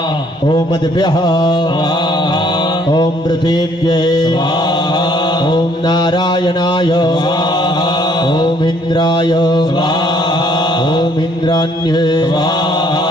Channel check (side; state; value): both; normal; correlation 0.63